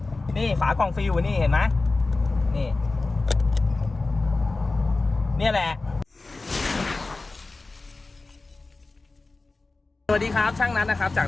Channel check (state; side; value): quieter; right; 3.5 dB